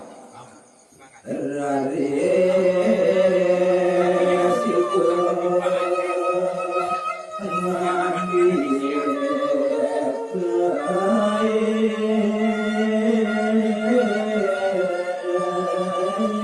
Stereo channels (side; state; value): both; identical; correlation 1.00